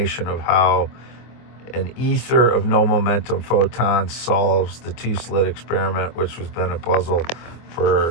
of how an ether of no momentum photons solves the two-slit experiment, which has been a puzzle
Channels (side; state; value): right; late; 24 ms